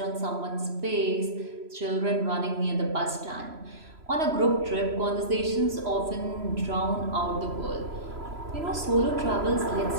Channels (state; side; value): late; left; 3.0 ms